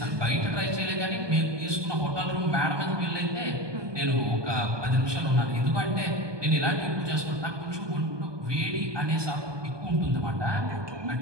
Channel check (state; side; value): late; left; 1.2 ms